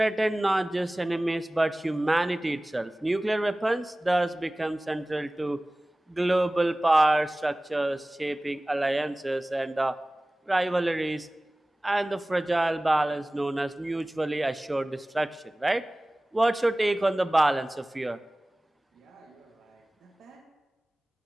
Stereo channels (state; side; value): normal; both; correlation 0.98